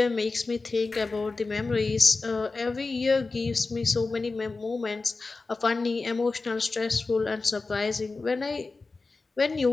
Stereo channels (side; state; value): right; quieter; 3.8 dB